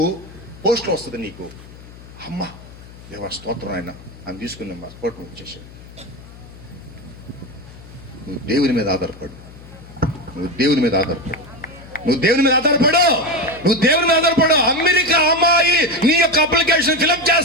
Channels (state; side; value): noise; left; hum, 19 dB below the sound